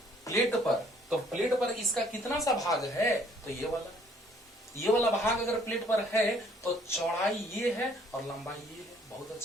प्लेट पर, तो प्लेट पर इसका कितना सा भाग है, तो ये वाला भाग अगर प्लेट पर है तो चौड़ाई ये है और लंबाई ये है। बहुत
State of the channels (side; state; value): both; normal; correlation 0.61